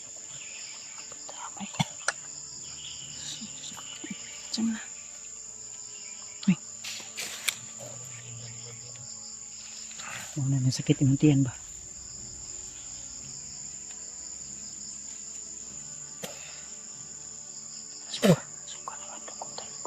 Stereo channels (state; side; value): identical; both; correlation 1.00